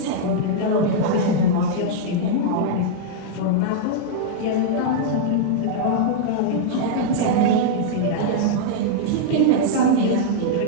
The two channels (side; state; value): both; different; correlation -0.02